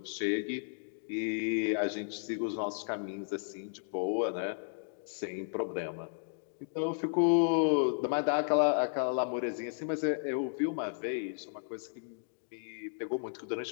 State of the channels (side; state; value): right; silent; digital silence